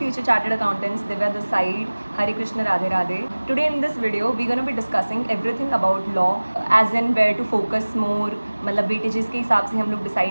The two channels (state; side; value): inverted; both; correlation -1.00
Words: chartered accountants, Divya this side, Hare Krishna Radhe Radhe. Today in this video we gonna be discussing everything about law, as in where to focus more, मतलब वेटेजेस के हिसाब से हम लोग